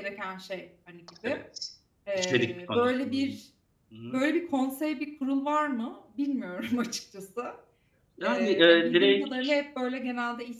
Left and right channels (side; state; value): both; identical; correlation 1.00